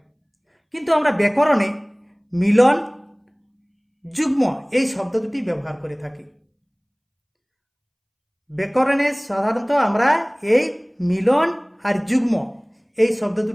কিন্তু আমরা ব্যাকরণে মিলন, যুগ্ম এই শব্দ দুটি ব্যবহার করে থাকি। ব্যাকরণে সাধারণত আমরা এই মিলন আর যুগ্ম এই শব্দ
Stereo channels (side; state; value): both; identical; correlation 1.00